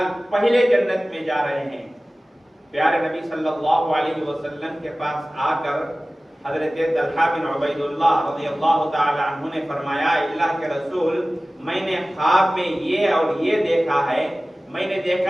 پہلے جنت میں جا رہے ہیں۔ پیارے نبی صلی اللہ علیہ وسلم کے پاس آ کر حضرت طلحہ بن عبید اللہ رضی اللہ تعالی عنہ نے فرمایا، اللہ کے رسول، میں نے خواب میں یہ اور یہ دیکھا ہے، میں نے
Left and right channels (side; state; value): both; normal; correlation 0.97